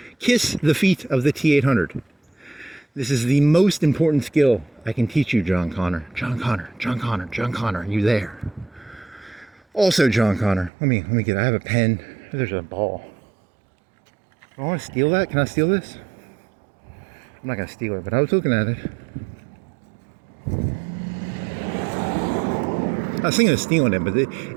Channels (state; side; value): drops out; left; at 10.7 s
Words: Kiss the feet of the T-800. This is the most important skill I can teach you, John Connor. John Connor, John Connor, John Connor, are you there? Also, John Connor, let me I have a pen. There's a ball. Do I want to steal that? Can I steal this? I'm not going to steal it, but I was looking at it. I was thinking of stealing it, but